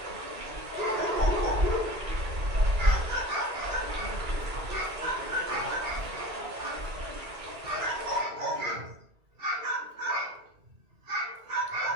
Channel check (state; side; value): late; left; 2.3 ms